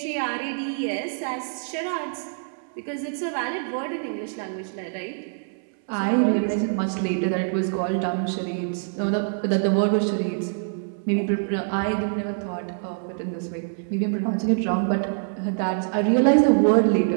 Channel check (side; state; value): left; silent; 62 dB below the other